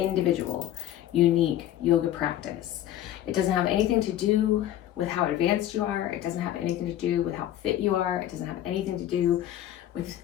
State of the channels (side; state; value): right; quieter; 12.4 dB